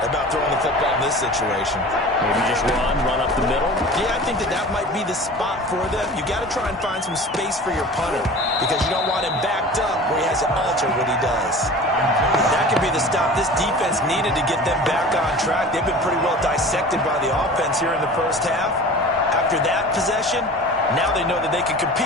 about throwing the football in this situation. Maybe just run up the middle? Yeah, I think that might be the spot for them. You got to try and find some space for your punter because you don't want him backed up where he has to alter what he does. That could be the stop this defense needed to get them back on track. They've been pretty well dissected by the offense here in the first half. After that possession, now they know that they can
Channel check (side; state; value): both; normal; correlation 0.39